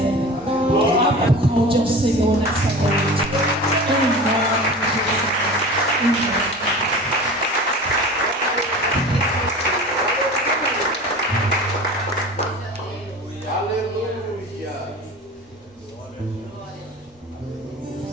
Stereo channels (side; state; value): both; normal; correlation 0.36